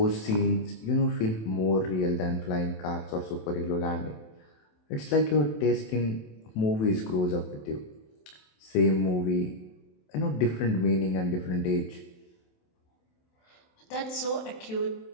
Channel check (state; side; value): late; right; 27 ms